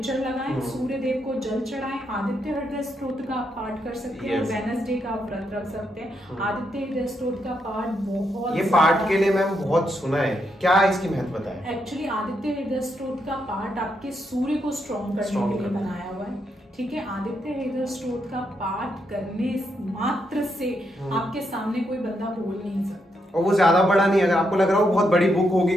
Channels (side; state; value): both; normal; correlation 0.80